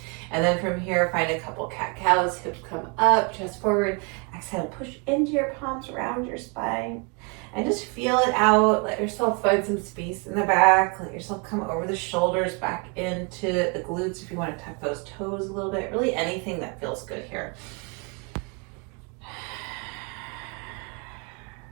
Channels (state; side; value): quieter; left; 34.0 dB